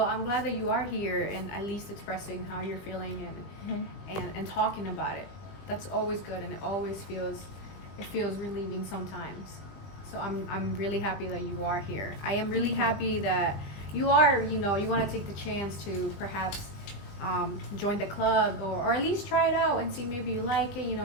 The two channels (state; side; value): late; right; 20 ms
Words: glad that you are here and at least expressing how you're feeling and talking about it. That's always good, and it always feels relieving sometimes. So I'm really happy that you are here. I am really happy that you are, you want to take the chance to perhaps join the club, or at least try it out and see maybe you like